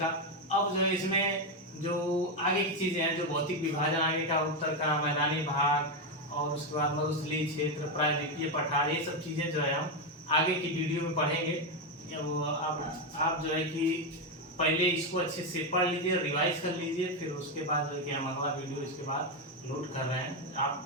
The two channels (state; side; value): normal; both; correlation 0.07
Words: अब जो है इसमें जो आगे की चीजें हैं, जो भौतिक विभाजन आगे का, उत्तर का, मैदानी भाग, और उसके बाद मरुस्थलीय क्षेत्र, प्रायद्वीपीय पठार, ये सब चीजें जो है हम आगे की वीडियो में पढ़ेंगे। आप जो है कि पहले इसको अच्छे से पढ़ लीजिए, रिवाइज कर लीजिए, फिर उसके बाद जो है कि हम अगला वीडियो इसके बाद लोड कर रहे हैं।